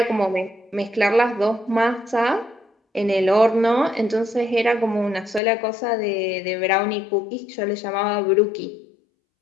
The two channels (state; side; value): drops out; right; at 5.4 s